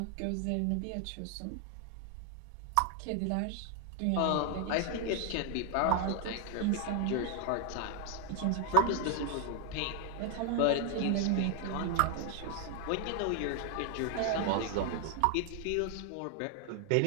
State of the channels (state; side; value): different; both; correlation 0.00